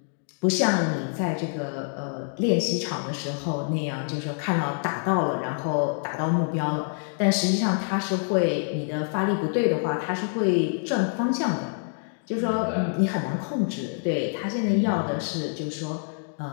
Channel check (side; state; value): right; silent; 61 dB below the other